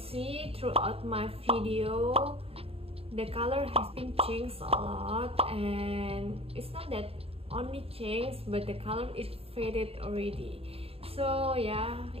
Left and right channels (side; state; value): left; late; 0.28 ms